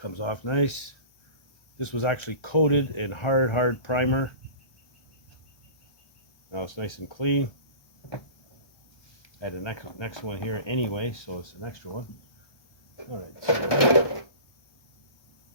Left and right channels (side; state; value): right; late; 1.3 ms